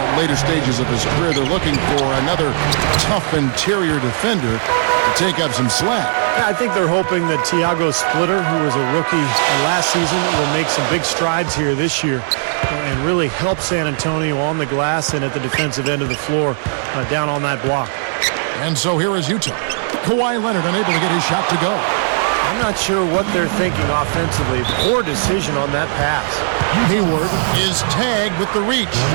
later stages of his career, they're looking for another tough interior defender to take up some slack. Yeah, I think they're hoping that Tiago Splitter, who was a rookie last season, will make some big strides here this year and really help San Antonio on the glass and at the defensive end of the floor down on that block. And so here is Utah. Kawhi Leonard unable to get his shot to go. I'm not sure what they're thinking offensively. Poor decision on that pass. Hayward is tagged with the reach.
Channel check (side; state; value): left; silent; digital silence